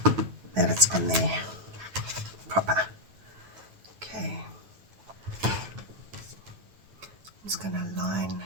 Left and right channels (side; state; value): left; late; 9.1 ms